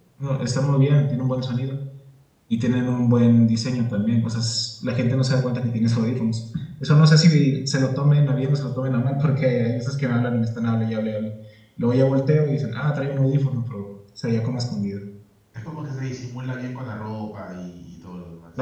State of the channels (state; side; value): identical; both; correlation 1.00